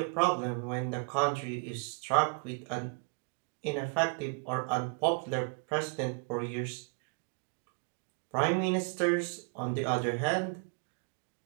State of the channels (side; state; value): left; quieter; 32.0 dB